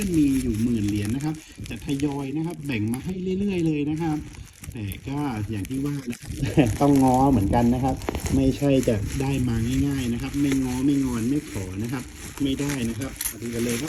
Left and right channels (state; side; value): identical; both; correlation 1.00